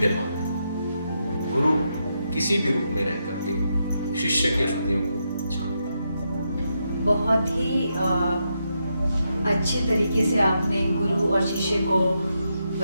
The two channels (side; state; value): both; inverted; correlation -0.83